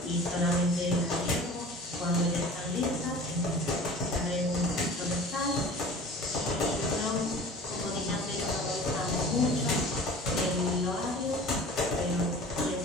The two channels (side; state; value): both; normal; correlation 0.42